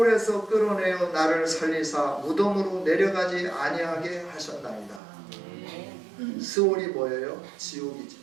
끌어내어 나를 살리사 무덤으로 내려가지 아니하게 하셨나이다. 스올이 뭐예요? 지옥이지.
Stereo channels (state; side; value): drops out; left; at 5.0 s